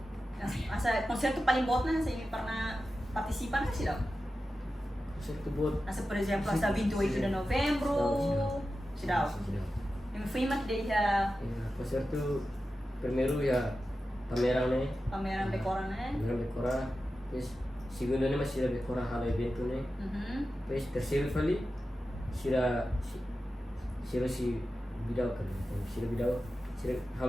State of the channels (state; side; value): normal; both; correlation 0.92